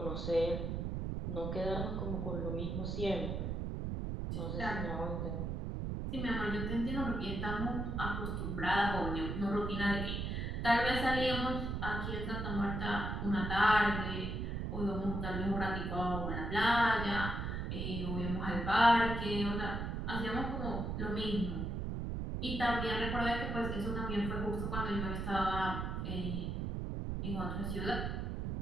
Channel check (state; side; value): noise; right; rumble, 2 dB below the sound